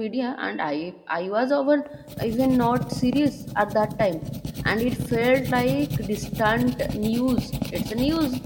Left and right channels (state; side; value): identical; both; correlation 1.00